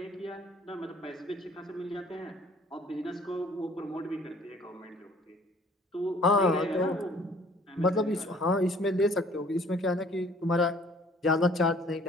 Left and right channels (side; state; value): both; normal; correlation 0.56